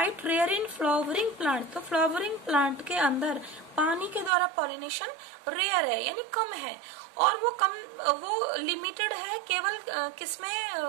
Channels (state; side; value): drops out; left; at 4.3 s